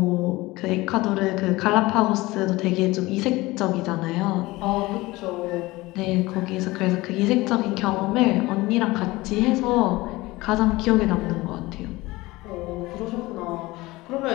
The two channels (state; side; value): quieter; right; 20.3 dB